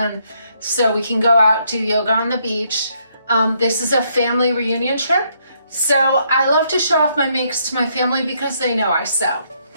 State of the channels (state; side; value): inverted; both; correlation -0.73